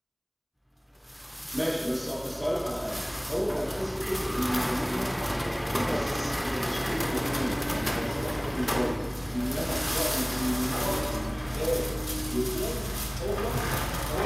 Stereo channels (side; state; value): both; identical; correlation 1.00